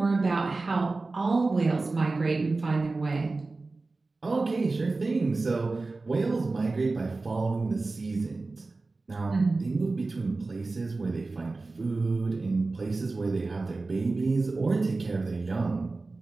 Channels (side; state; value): left; quieter; 3.5 dB